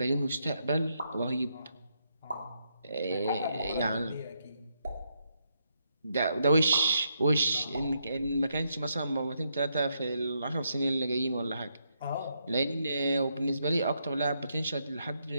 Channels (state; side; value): inverted; both; correlation -0.78